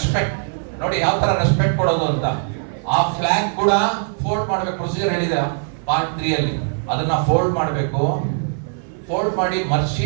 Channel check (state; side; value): silent; left; 56 dB below the other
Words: ನೋಡಿ ಯಾವ ತರ ರೆಸ್ಪೆಕ್ಟ್ ಕೊಡೋದು ಅಂತ. ಆ ಫ್ಲಾಗ್ ಕೂಡ ಫೋಲ್ಡ್ ಮಾಡ್ಬೇಕು, ಪ್ರೊಸೀಜರ್ ಹೇಳಿದೆ ಪಾರ್ಟ್ 3 ಅಲ್ಲಿ. ಅದನ್ನ ಫೋಲ್ಡ್ ಮಾಡಬೇಕು, ಫೋಲ್ಡ್ ಮಾಡಿ